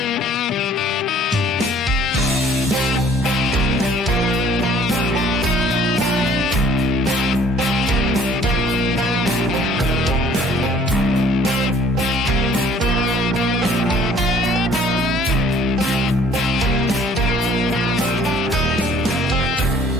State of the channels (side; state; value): both; normal; correlation 0.56